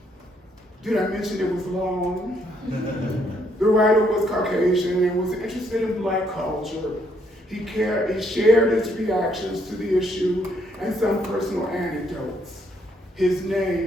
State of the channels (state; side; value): normal; both; correlation 0.71